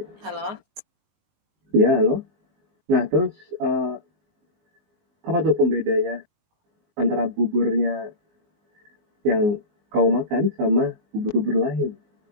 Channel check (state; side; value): late; left; 19 ms